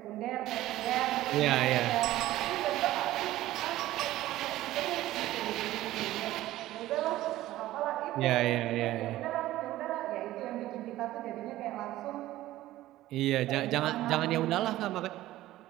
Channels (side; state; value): left; quieter; 15.4 dB